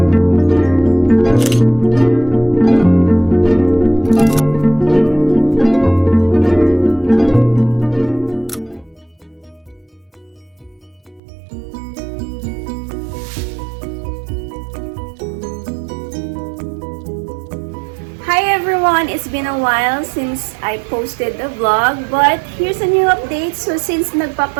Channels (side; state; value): left; drops out; at 11.2 s